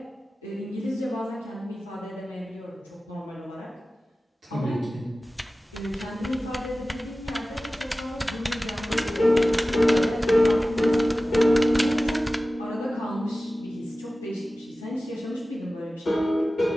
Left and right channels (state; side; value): normal; both; correlation 0.96